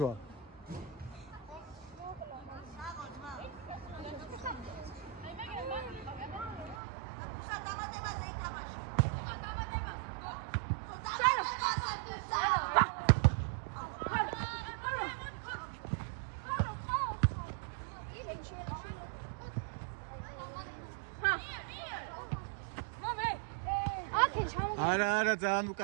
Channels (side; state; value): left; drops out; at 6.8 s